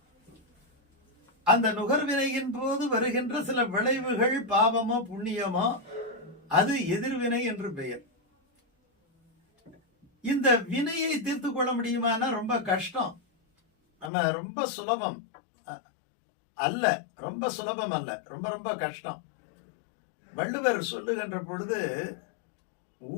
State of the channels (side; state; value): right; drops out; at 14.1 s